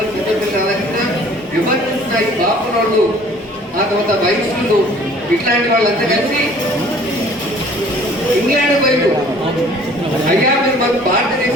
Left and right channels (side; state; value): both; normal; correlation 0.53